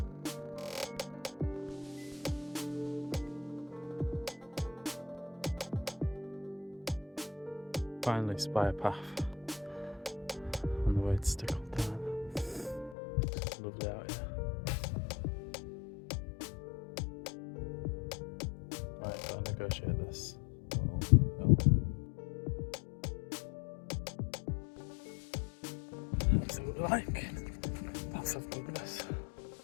Finally spy a path on the way to Stickle Tarn. It's lovely out here. Right, gotta negotiate this little hill. That's what we like. That's of goodness.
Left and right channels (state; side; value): drops out; right; at 13.0 s